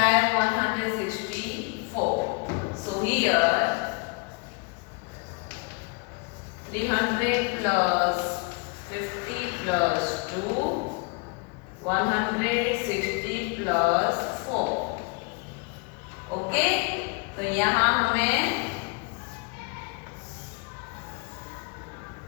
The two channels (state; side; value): quieter; right; 32.9 dB